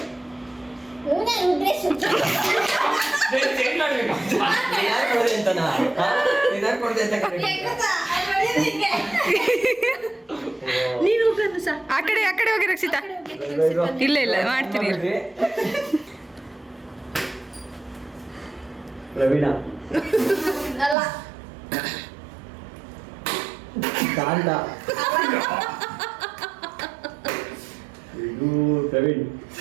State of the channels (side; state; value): left; drops out; at 21.0 s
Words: ರುದ್ರೇಶ್ ಚೇಂಜ್ ಮಾಡಬೇಕು. ನೀನು ಆ ಕಡೆ ಹೋಗಿ ರಕ್ಷಿತಾ. ಇಲ್ಲ ಮಾಡ್ತೀನಿ. ಪ್ರವೀಣ ಅಲ್ಲ ಕಾಂತ ಇದು ಪ್ರವೀಣ್